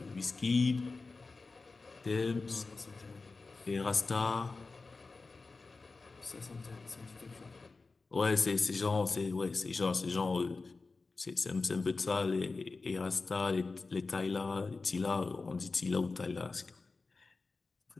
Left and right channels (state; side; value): quieter; right; 3.9 dB